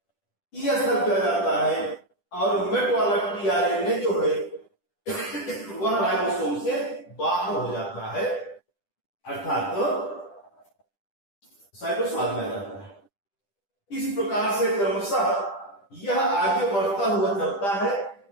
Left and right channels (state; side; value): late; right; 10 ms